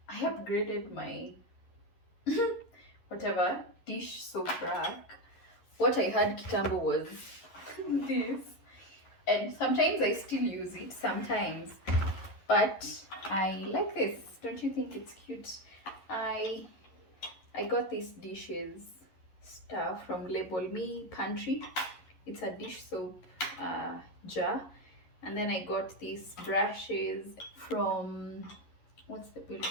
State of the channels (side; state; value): right; late; 11 ms